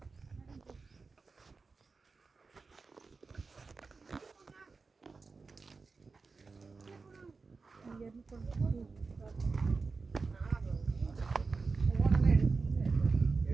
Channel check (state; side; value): quieter; left; 4.3 dB